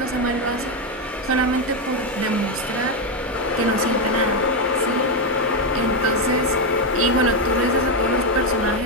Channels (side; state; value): both; normal; correlation 0.06